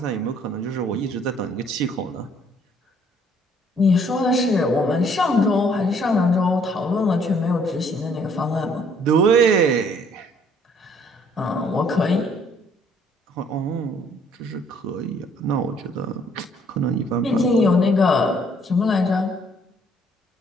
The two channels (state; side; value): normal; both; correlation 0.63